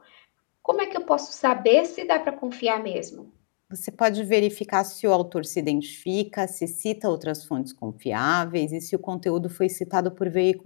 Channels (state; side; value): silent; right; 58 dB below the other